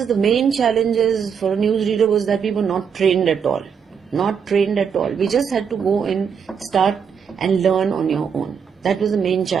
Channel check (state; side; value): quieter; left; 7.0 dB